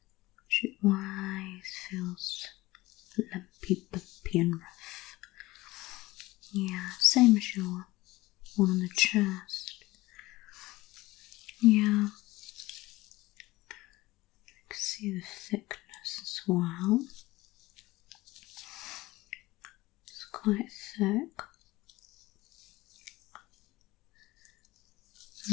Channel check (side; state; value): right; quieter; 19.1 dB